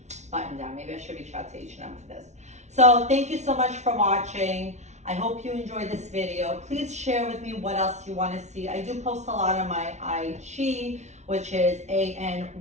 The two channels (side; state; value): left; late; 0.33 ms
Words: button down. Maybe I should reach out to H&M for this. So thank you so much for watching. I hope you enjoyed this video. Please share with me what else you want to see. I do post a lot on my IG, which is